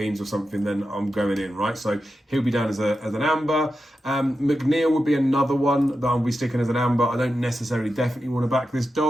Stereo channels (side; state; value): both; normal; correlation 0.90